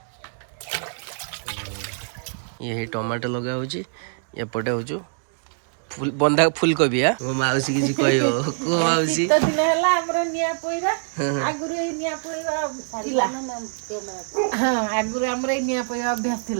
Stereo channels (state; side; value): silent; left; digital silence